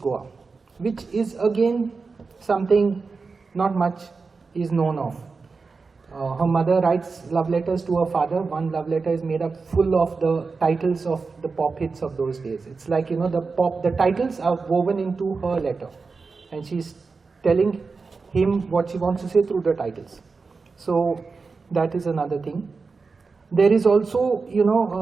which is again something not much is known of. Her mother writes love letters to her father. One love letter is made up full of the titles of the pop hits of those days. It's like, you know, the titles are woven into her letter, and she's telling him what she wants to say through the titles. So that is another thing. There is also, you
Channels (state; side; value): quieter; left; 4.5 dB